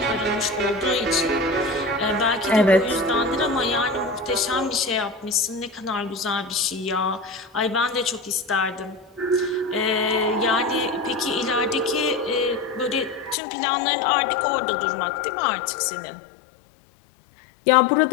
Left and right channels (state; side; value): drops out; right; at 13.4 s